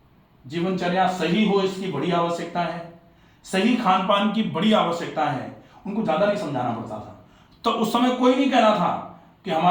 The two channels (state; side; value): identical; both; correlation 1.00